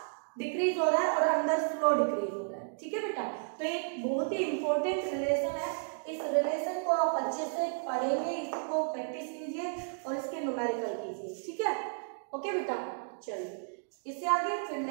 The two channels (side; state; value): left; silent; digital silence